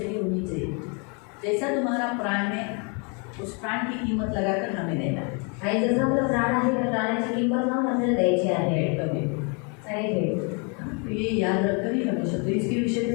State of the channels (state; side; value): quieter; right; 35.3 dB